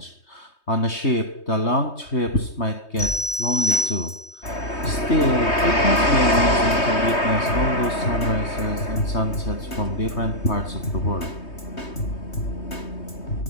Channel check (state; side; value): late; right; 3.2 ms